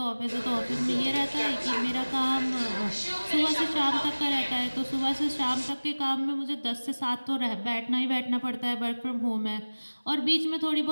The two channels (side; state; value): both; inverted; correlation -1.00